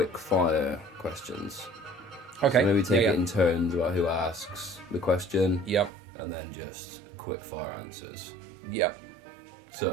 fire questions. Okay. So maybe take it in turns about who asks the question. Yep. And then just quick fire answers. Yep.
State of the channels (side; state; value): left; drops out; at 5.9 s